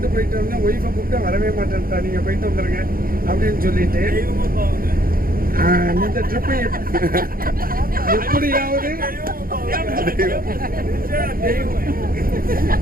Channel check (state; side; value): late; left; 0.42 ms